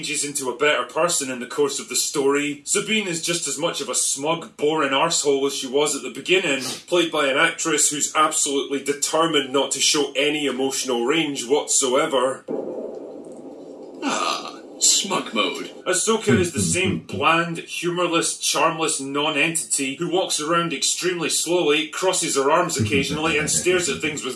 into a better person in the course of the story. Sabine is just as much of a smug, boring arsehole as she was at the beginning, played by an actress who's absolutely determined not to show any emotional range whatsoever. Smug mode. Ahsoka is the same bland, humourless, charmless non-entity who walks around extremely slowly, crosses her arms occasionally, and stares at things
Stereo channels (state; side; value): identical; both; correlation 1.00